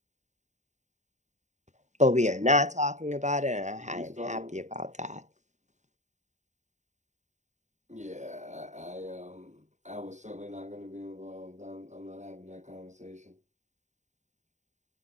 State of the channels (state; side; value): late; left; 0.34 ms